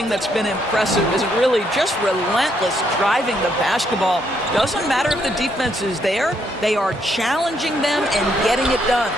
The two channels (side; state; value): both; normal; correlation 0.73